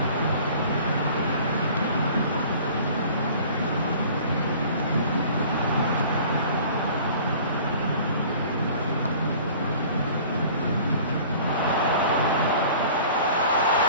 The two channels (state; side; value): inverted; both; correlation -0.47